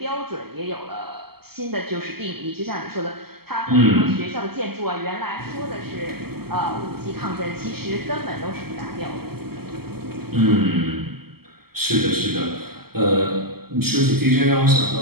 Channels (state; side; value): late; left; 0.95 ms